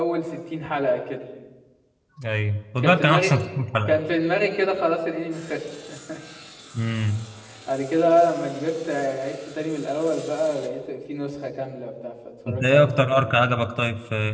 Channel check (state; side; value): identical; both; correlation 1.00